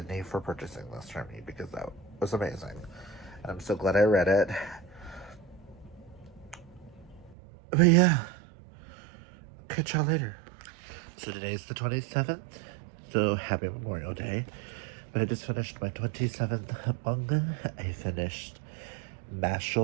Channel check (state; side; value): drops out; left; at 7.4 s